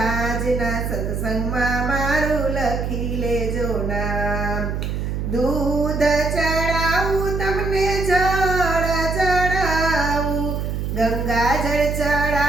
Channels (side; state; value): right; noise; hum, 2 dB below the sound